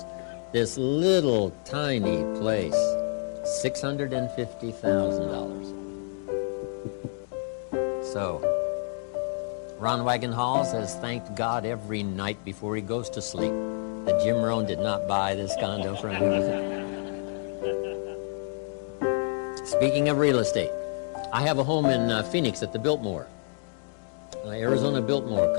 this little tiny place, $650,000. So, Rohn Wagonhalls has thanked God every night before he goes to sleep that Jim Rohn did not buy this condo from him. Speaking of real estate, I have a home in Phoenix at the Biltmore, Arizona Biltmore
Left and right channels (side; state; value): right; silent; 59 dB below the other